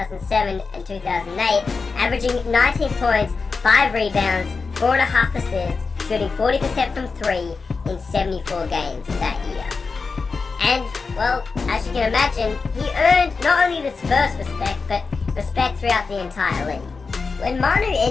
and 2008, averaging 19 points, 5 rebounds, 4.5 assists, shooting 40% from 3 in 74 games that year. And, well, as you can imagine, he earned not only the Spurs respect, but respect throughout the entire league. When Manu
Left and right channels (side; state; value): right; quieter; 4.6 dB